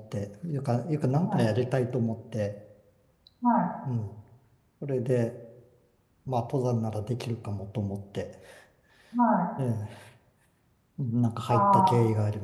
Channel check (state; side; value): identical; both; correlation 1.00